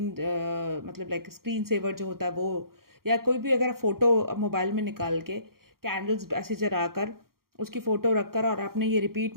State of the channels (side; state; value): left; late; 0.93 ms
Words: मतलब लाइक स्क्रीन सेवर जो होता है वो, या कोई भी अगर फ़ोटो मोबाइल में निकाल के कैंडल्स ऐसे जला कर उसकी फ़ोटो रखकर और आपने ये रिपीट